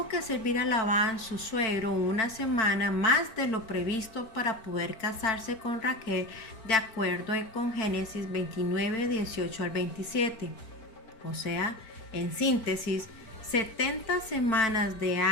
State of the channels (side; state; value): right; late; 4.5 ms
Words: que servir a Labán, su suegro, una semana más de lo previsto para poder casarse con Raquel, de acuerdo con Génesis 29, 18 al 27. O sea, en síntesis, 70 semanas de